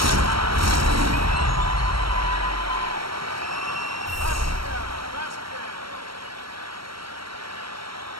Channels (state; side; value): late; left; 0.75 ms